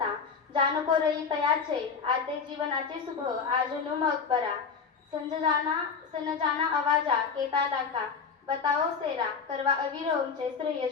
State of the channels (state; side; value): quieter; right; 5.6 dB